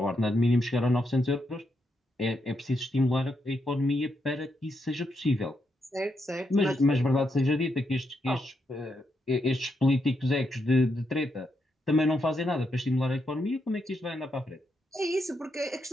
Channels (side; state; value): both; normal; correlation 0.81